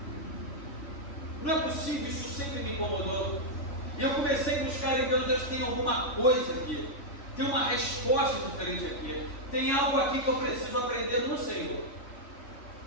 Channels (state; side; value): late; right; 3.5 ms